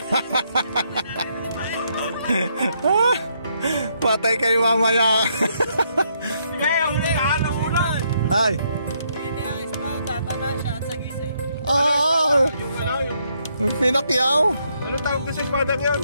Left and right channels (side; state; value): both; inverted; correlation -0.74